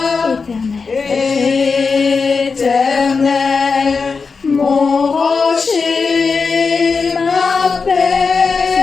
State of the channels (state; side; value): quieter; right; 4.9 dB